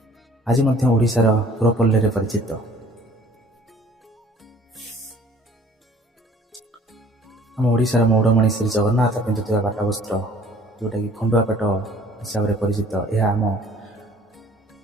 ଆଜି ମଧ୍ୟ ଓଡ଼ିଶାର ପୁରପଲ୍ଲୀରେ ପରିଚିତ। ଆମ ଓଡ଼ିଶାର ମୌଡ଼ମଣି ଶ୍ରୀ ଜଗନ୍ନାଥ ପିନ୍ଧୁଥିବା ପାଟ ବସ୍ତ୍ର, ଯେଉଁଟାକି ଖଣ୍ଡୁଆ ପାଟ ହିସାବରେ ପରିଚିତ, ଏହା ଆମ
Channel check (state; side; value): normal; both; correlation 0.53